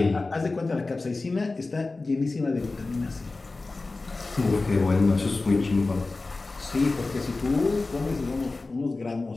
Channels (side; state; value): right; quieter; 3.5 dB